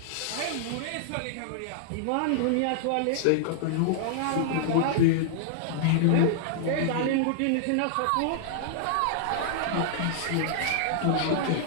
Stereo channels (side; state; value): both; different; correlation -0.01